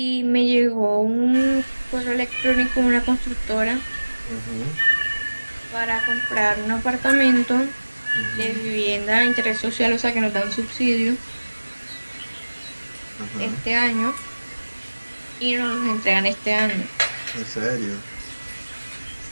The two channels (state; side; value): inverted; both; correlation -1.00